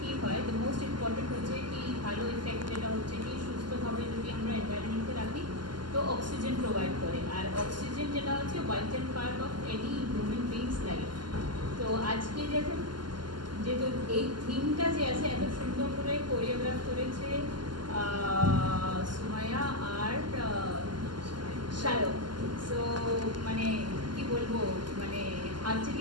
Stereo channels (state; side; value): late; left; 0.71 ms